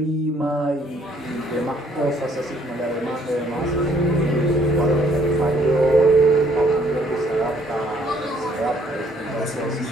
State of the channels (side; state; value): both; normal; correlation 0.64